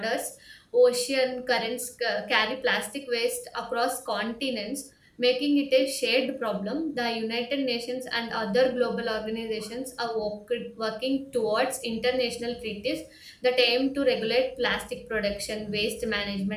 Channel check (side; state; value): both; identical; correlation 1.00